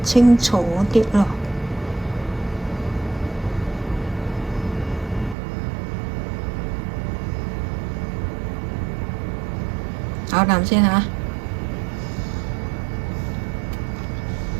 清楚啲咯。咬啖先嚇。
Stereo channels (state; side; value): drops out; left; at 5.4 s